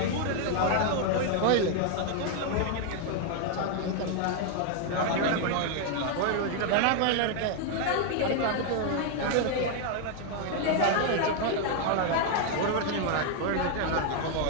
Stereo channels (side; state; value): both; different; correlation 0.00